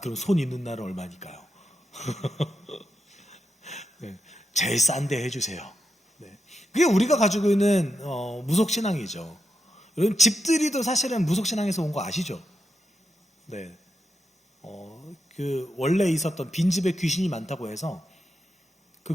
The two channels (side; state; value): both; normal; correlation 0.85